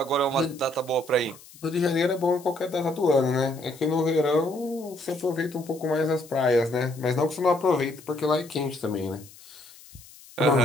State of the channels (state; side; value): noise; left; hiss, 21 dB below the sound